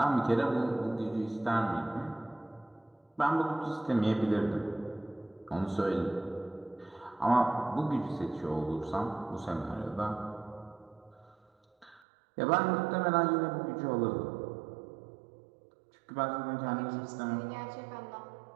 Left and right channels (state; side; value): drops out; left; at 12.0 s